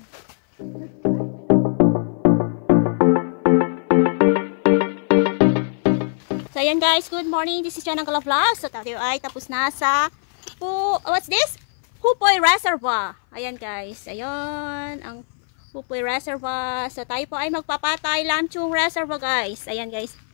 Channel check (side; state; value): right; silent; 58 dB below the other